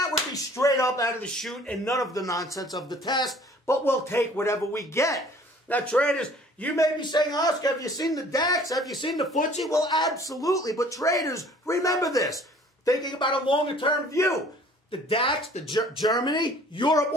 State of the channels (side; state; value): both; normal; correlation 0.52